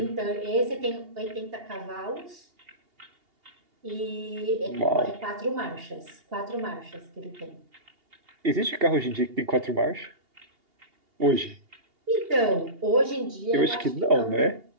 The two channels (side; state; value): left; late; 2.8 ms